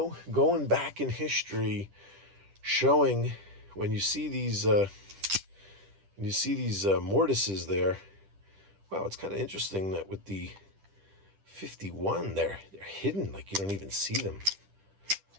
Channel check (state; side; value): late; left; 10 ms